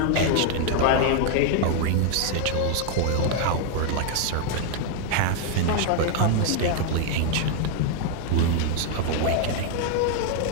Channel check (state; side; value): different; both; correlation 0.00